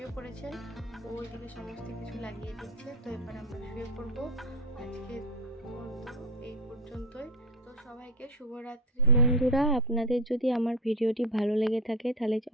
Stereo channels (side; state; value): both; normal; correlation 0.21